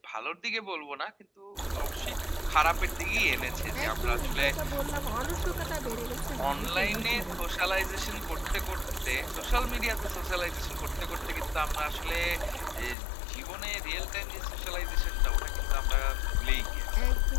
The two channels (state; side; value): drops out; right; at 13.0 s